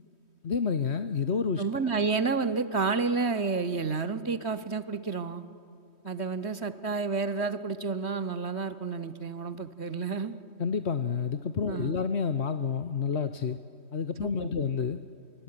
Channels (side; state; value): right; late; 3.2 ms